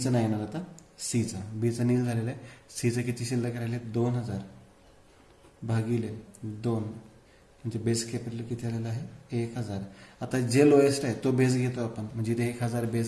नाही येणार आता, सीचं. बीचं नील झालेलं आहे. सीचं किती शिल्लक राहिले? 2,000 भागिले 2 म्हणजे बेस कॅपिटल किती आलेलं आहे? 1,000. आता जे लोएस्ट आहे तो बेस घेतो आपण, म्हणजे इथे 1,000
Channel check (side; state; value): both; identical; correlation 1.00